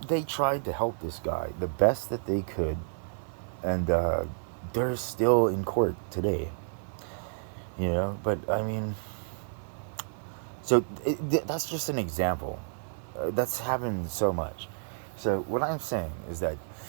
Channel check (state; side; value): silent; left; digital silence